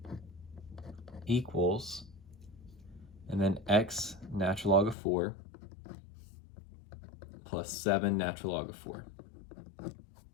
equals, and then x natural log of 4 plus 7 natural log of 4.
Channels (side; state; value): right; drops out; at 5.0 s